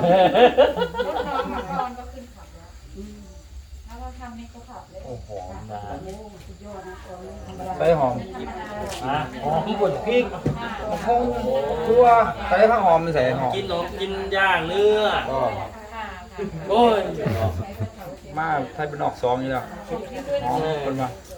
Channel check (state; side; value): identical; both; correlation 1.00